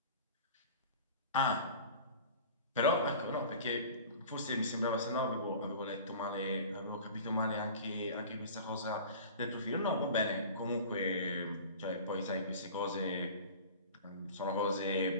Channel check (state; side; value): inverted; both; correlation -0.40